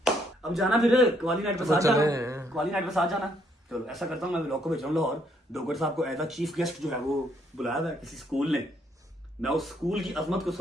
अब जाना फिर कवाली नाइट पे साथ जाना, कवाली नाइट पे साथ जाना। चलो ऐसा करता हूँ, मैं व्लॉग को भेज रहा हूँ लाहौर। डोगर साहब को एज अ चीफ गेस्ट जो है वो बुलाया हुआ है किसी स्कूल ने। मैं उस स्कूल की अजमत को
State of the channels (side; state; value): both; normal; correlation 0.70